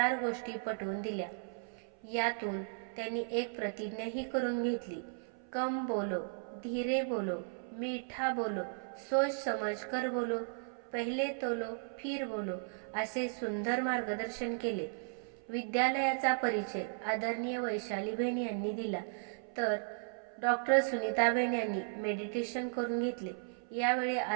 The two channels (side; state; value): left; silent; 54 dB below the other